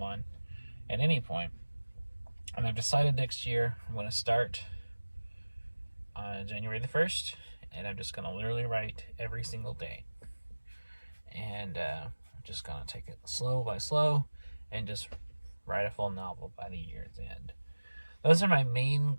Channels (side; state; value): both; inverted; correlation -1.00